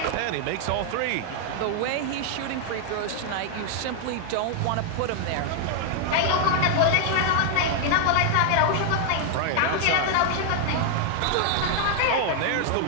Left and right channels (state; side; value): different; both; correlation 0.00